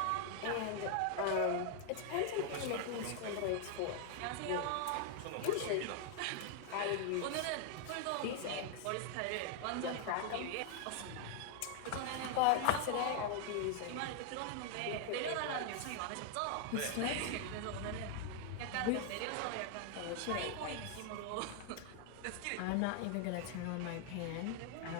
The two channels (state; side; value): different; both; correlation 0.00